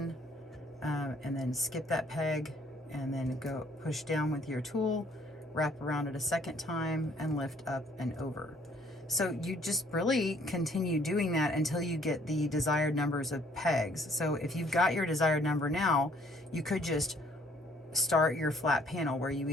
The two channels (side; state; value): both; normal; correlation 0.62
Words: and then skip that peg, and then go push down with your tool, wrap around it a second time, and lift up and over. So you just really continue doing that until you get the desired numbers of pegs. So if you've got your desired number now, you could just start your flat panel where you